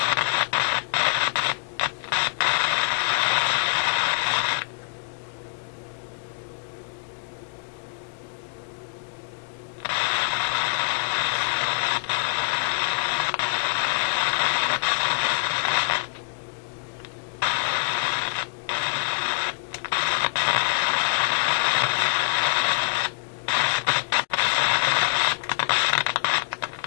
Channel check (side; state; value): right; silent; digital silence